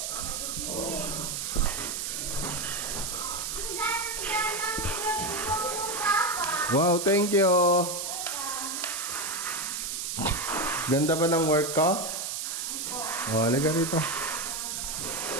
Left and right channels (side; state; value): right; noise; hiss, 3 dB below the sound